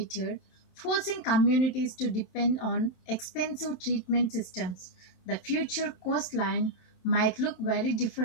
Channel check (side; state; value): right; late; 27 ms